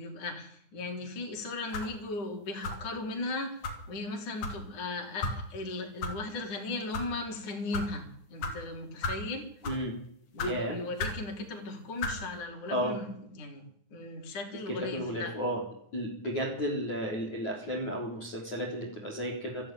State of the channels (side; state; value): right; late; 9.5 ms